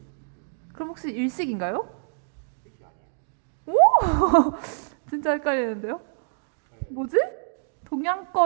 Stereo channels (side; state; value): left; silent; digital silence